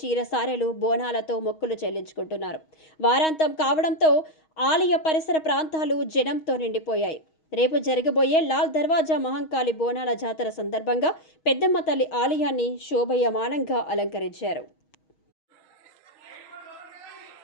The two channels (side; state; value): right; late; 6.3 ms